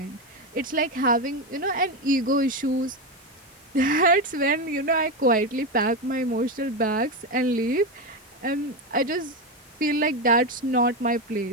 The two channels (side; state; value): both; normal; correlation 0.12